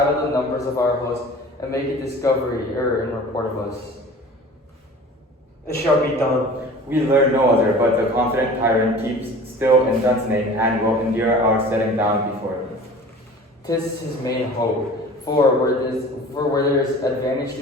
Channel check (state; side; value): normal; both; correlation 0.42